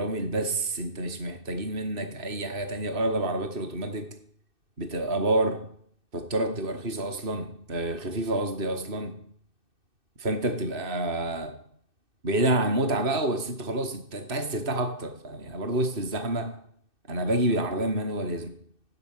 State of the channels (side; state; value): left; late; 2.6 ms